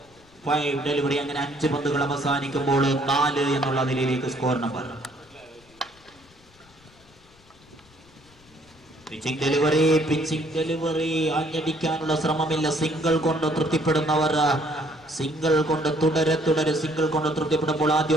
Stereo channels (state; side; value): noise; left; rumble, 29 dB below the sound